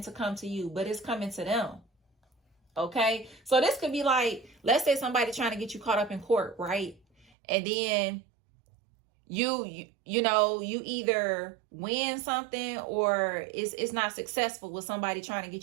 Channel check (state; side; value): drops out; left; at 7.2 s